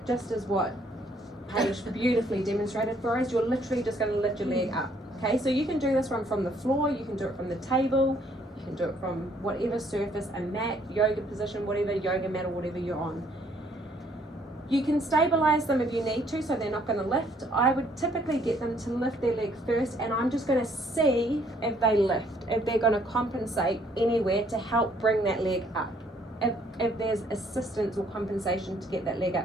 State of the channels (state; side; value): normal; both; correlation 0.65